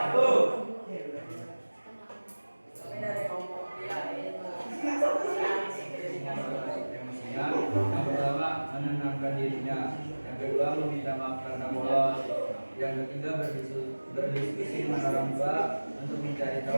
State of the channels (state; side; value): inverted; both; correlation -1.00